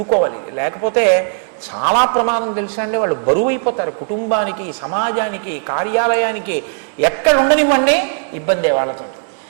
లేకపోతే చాలా ప్రమాదం తెలుసా అండి. వాళ్ళు బరువు అయిపోతారు కుటుంబానికి, సమాజానికి, కార్యాలయానికి. ఎక్కడ ఉండనివ్వండి ఇబ్బందే వాళ్ళతో.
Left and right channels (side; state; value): left; silent; digital silence